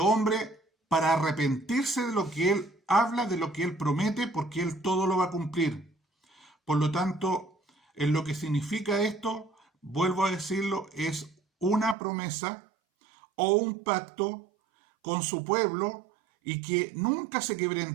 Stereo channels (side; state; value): left; drops out; at 12.0 s